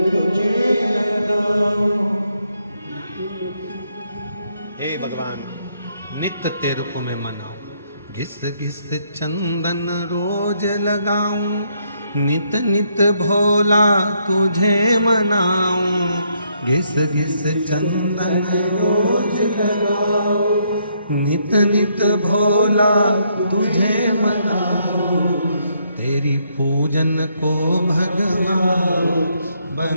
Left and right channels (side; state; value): both; inverted; correlation -0.73